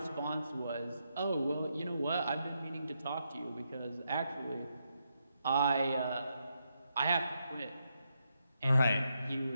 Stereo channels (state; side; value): inverted; both; correlation -0.81